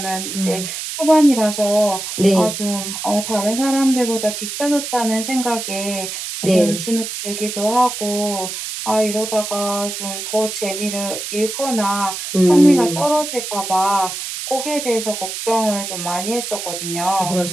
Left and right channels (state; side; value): noise; right; hiss, 6 dB below the sound